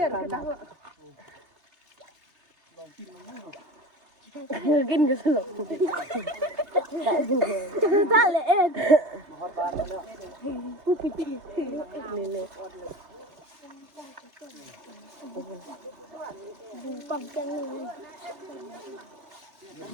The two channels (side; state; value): left; late; 3.3 ms